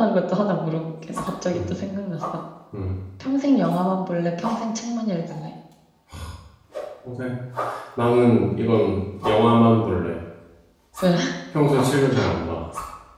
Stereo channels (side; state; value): both; identical; correlation 1.00